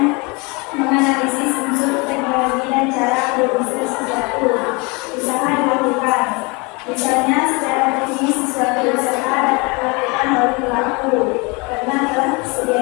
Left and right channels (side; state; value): right; quieter; 28.2 dB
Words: menganalisis unsur teknologi dan cara berusaha suatu usaha dilakukan. Misalnya, secara teknis suatu usaha dapat dilakukan oleh pelaku karena telah